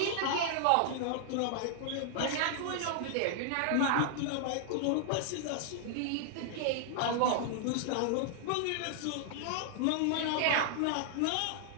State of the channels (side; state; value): both; different; correlation -0.01